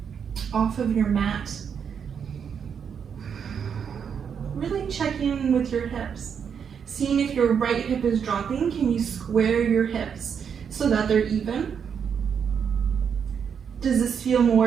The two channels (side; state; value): left; quieter; 7.2 dB